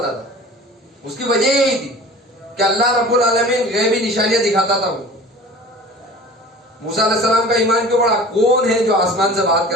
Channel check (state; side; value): normal; both; correlation 0.41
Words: تھا؟ اس کی وجہ یہی تھی کہ اللہ رب العالمین غیبی نشانیاں دکھاتا تھا. موسیٰ علیہ السلام کا ایمان کیوں بڑھا؟ کون ہے جو آسمان سے بات